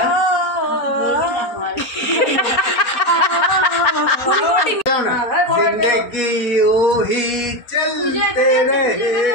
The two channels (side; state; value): right; late; 4.2 ms